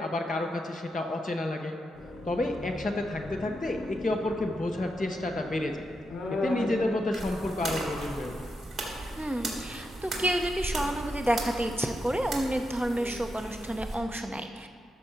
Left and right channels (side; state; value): both; normal; correlation 0.85